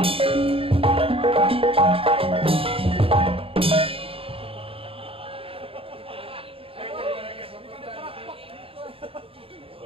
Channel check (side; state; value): left; late; 0.27 ms